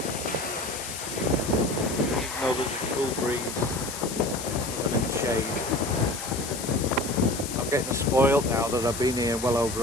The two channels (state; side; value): noise; left; hiss, 8 dB below the sound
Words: Even though there's a cool breeze and in the shade. I'm getting spoiled now that I've been here well over